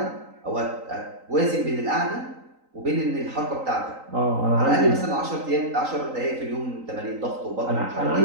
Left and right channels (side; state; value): left; late; 3.9 ms